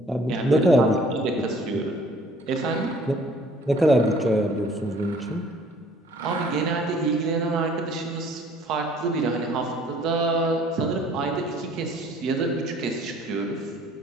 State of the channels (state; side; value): normal; both; correlation 0.55